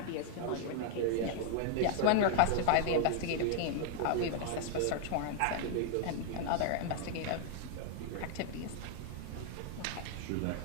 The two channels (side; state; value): both; different; correlation 0.00